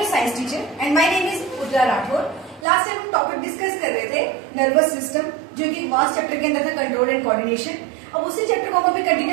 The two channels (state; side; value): drops out; left; at 2.7 s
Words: science teacher and my name is Udra Rathore. Last time हम टॉपिक डिस्कस कर रहे थे नर्वस सिस्टम, जो कि वास्ट चैप्टर के अंदर था कंट्रोल एंड कोऑर्डिनेशन. अब उसी चैप्टर को हम अभी